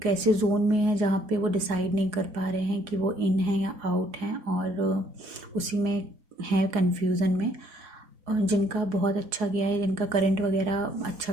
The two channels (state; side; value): late; left; 4.8 ms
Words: ऐसे जोन में है जहाँ पे वो डिसाइड नहीं कर पा रहे हैं कि वो इन है या आउट हैं, और उसी में है कन्फ्यूज़न में। जिनका बहुत अच्छा गया है, जिनका करंट वगैरह अच्छा